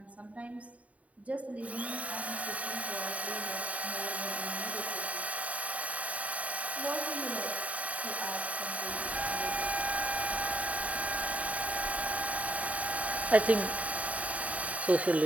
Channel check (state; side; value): late; left; 0.068 ms